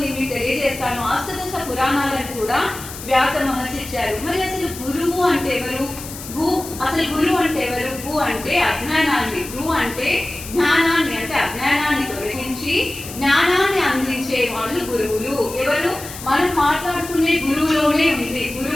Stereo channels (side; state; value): left; noise; hiss, 12 dB below the sound